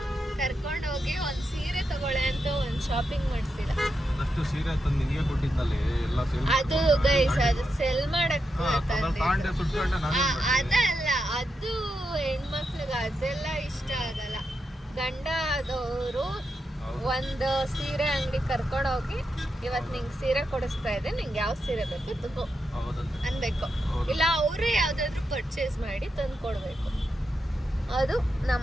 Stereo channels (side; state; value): both; normal; correlation 0.86